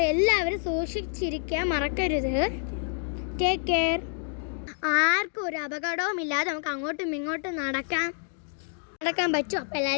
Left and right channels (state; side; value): silent; right; 59 dB below the other